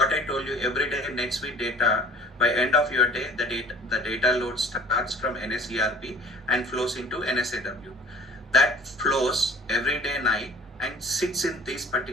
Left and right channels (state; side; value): normal; both; correlation 0.47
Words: I told you, every day NetSuite data, by end of your day, the data load starts from NSERP and flows into NSAW. That flows every day night and sits in these